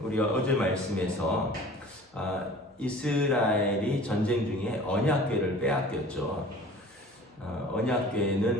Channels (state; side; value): normal; both; correlation 0.45